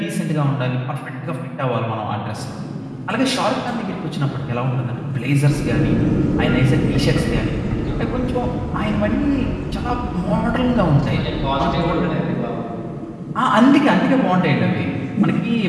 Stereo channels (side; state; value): both; identical; correlation 1.00